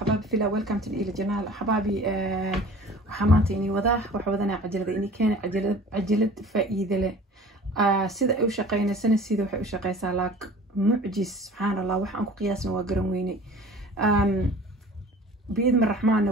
في ويلكم تو إلى جنال حبايبي. وحمانتي إني وضاح وحوضنا عجلة إني كان عجلة فائدة له. سيدا أو شقينا سنة سيدا وحي شقي سالاك معجز سبحان الله وحن قياسنا وقرنويني. بإذن الرحمن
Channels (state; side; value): normal; both; correlation 0.44